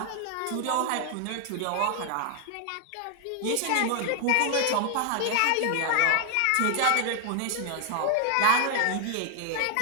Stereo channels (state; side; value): different; both; correlation 0.00